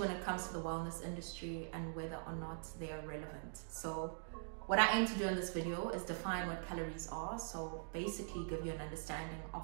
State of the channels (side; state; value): left; silent; digital silence